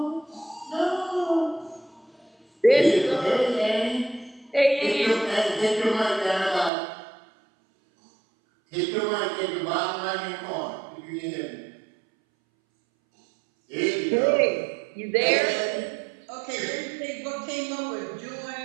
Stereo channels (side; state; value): left; drops out; at 6.7 s